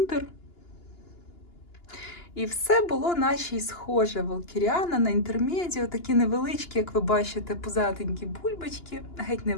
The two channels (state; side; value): late; right; 2.9 ms